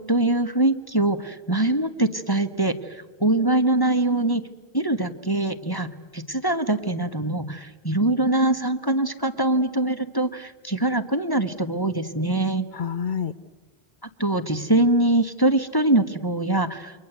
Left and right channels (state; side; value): late; right; 1.1 ms